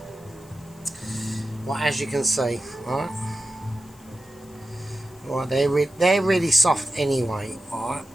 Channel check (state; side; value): noise; left; hiss, 26 dB below the sound